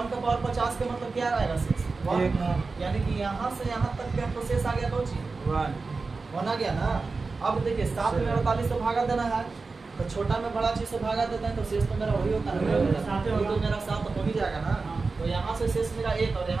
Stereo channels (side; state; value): left; quieter; 4.1 dB